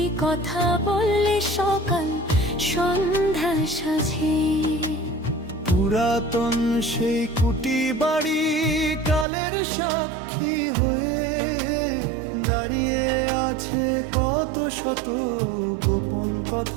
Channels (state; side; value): drops out; left; at 9.2 s